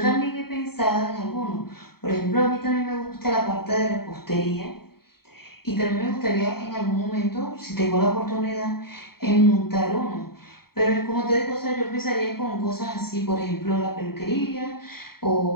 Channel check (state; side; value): late; right; 0.95 ms